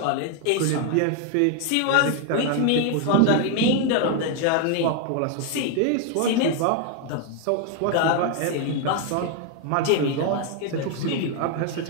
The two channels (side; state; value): both; different; correlation 0.00